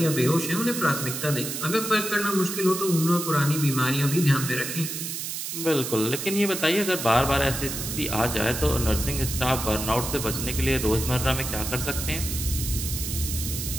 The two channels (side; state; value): right; noise; hiss, 5 dB below the sound